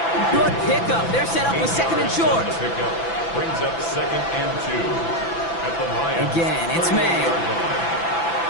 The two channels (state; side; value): late; right; 6.0 ms